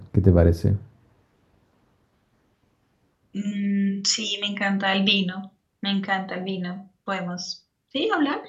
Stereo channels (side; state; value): both; identical; correlation 1.00